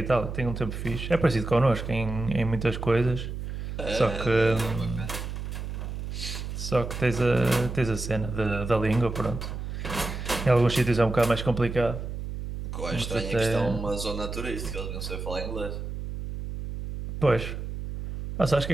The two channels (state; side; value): noise; right; hum, 6 dB below the sound